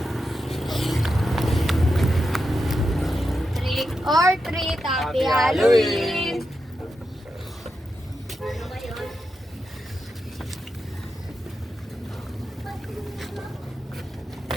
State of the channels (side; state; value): both; normal; correlation 0.88